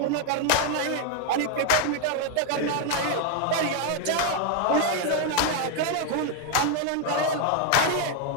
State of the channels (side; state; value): both; different; correlation 0.01